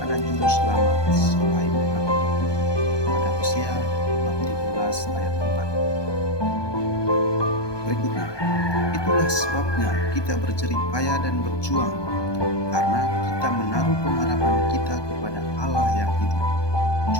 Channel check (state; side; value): late; right; 1.2 ms